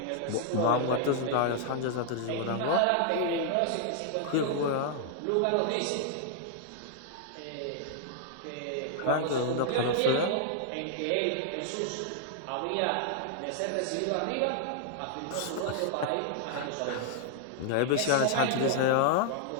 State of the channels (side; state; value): both; different; correlation -0.01